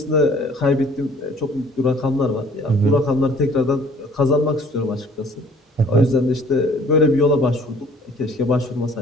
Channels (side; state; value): both; normal; correlation 0.54